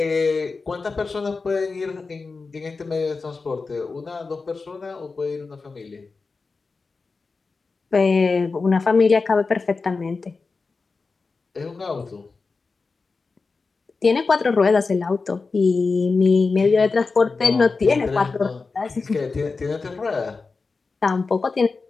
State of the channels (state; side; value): quieter; right; 4.2 dB